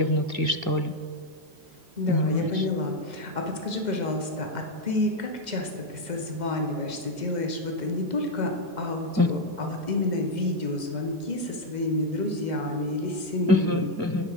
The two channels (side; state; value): left; late; 2.0 ms